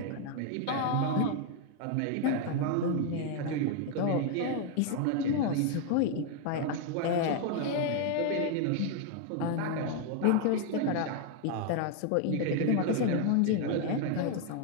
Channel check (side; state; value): both; different; correlation 0.00